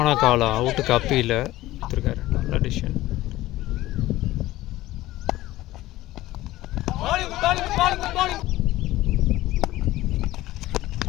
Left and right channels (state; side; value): quieter; right; 16.5 dB